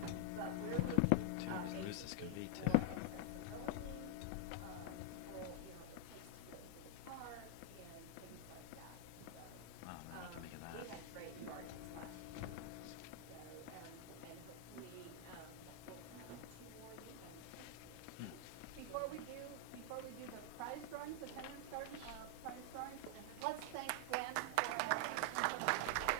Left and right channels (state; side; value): different; both; correlation 0.00